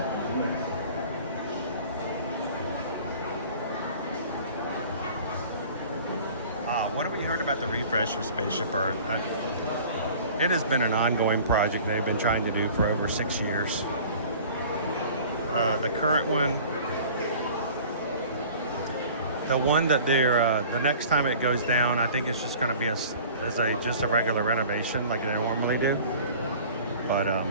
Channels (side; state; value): both; inverted; correlation -0.45